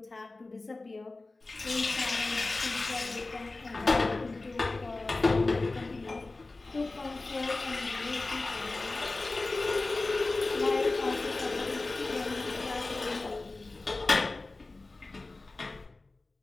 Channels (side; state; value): right; quieter; 3.3 dB